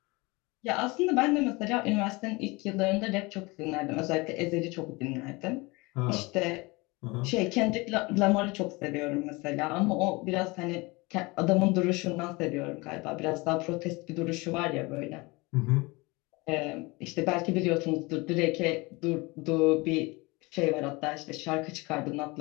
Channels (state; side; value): quieter; right; 24.7 dB